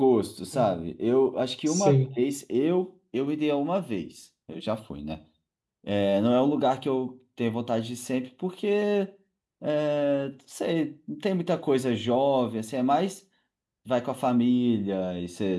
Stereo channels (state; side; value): identical; both; correlation 1.00